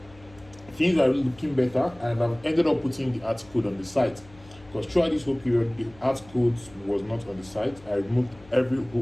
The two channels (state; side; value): noise; left; hum, 23 dB below the sound